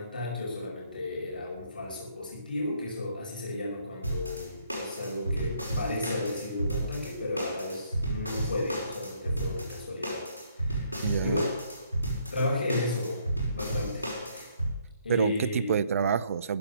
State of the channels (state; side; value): inverted; both; correlation -0.67